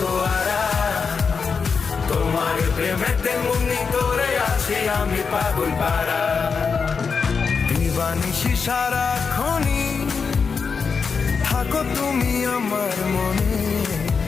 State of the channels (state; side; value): quieter; right; 5.4 dB